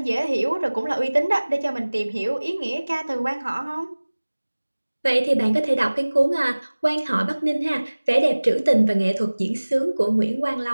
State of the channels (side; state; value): both; inverted; correlation -1.00